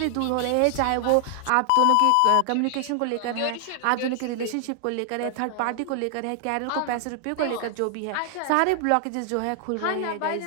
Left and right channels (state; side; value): different; both; correlation 0.00